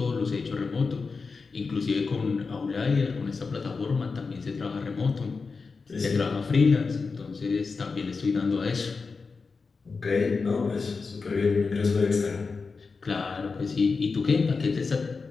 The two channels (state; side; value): quieter; right; 4.6 dB